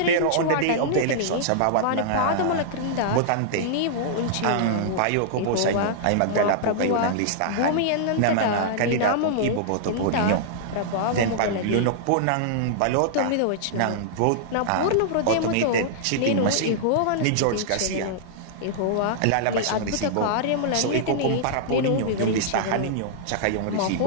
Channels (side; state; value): both; different; correlation -0.02